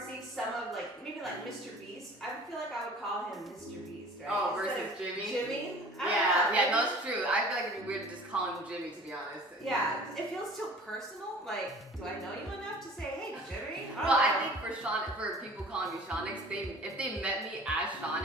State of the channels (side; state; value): both; normal; correlation 0.46